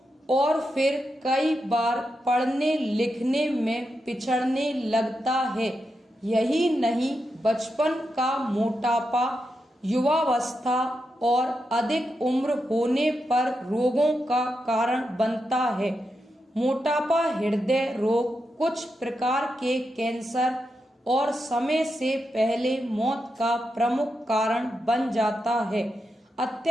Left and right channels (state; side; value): normal; both; correlation 0.86